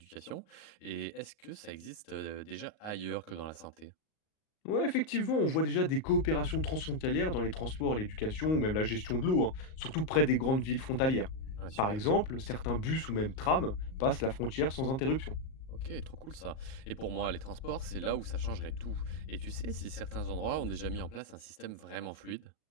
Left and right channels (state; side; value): late; right; 38 ms